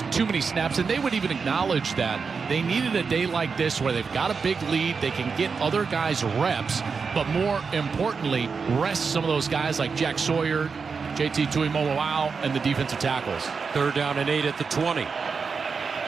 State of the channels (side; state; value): left; quieter; 5.3 dB